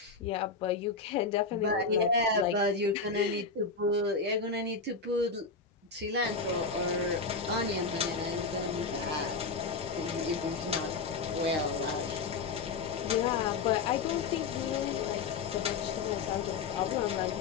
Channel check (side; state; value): right; quieter; 4.6 dB